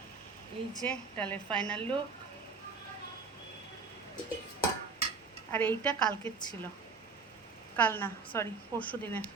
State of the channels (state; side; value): quieter; left; 4.7 dB